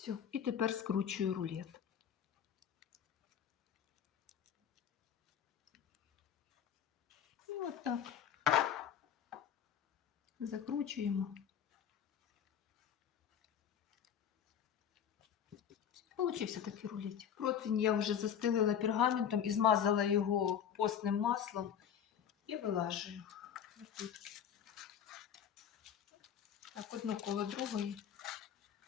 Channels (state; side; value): quieter; right; 8.7 dB